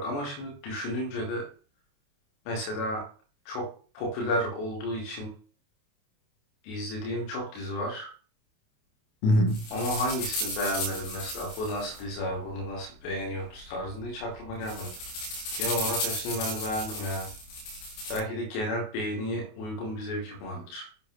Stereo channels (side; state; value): right; late; 28 ms